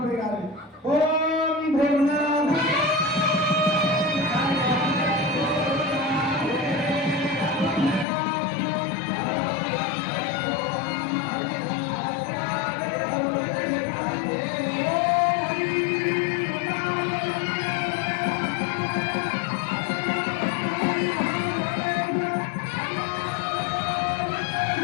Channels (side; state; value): right; drops out; at 8.1 s